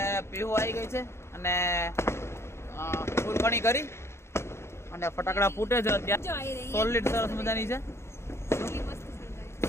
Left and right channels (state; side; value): late; right; 0.13 ms